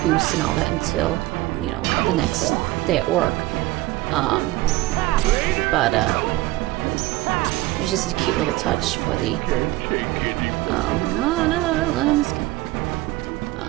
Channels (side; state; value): left; quieter; 18.2 dB